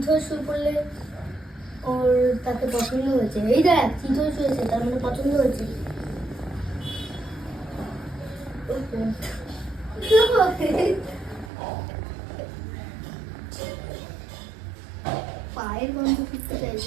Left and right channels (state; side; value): drops out; left; at 11.5 s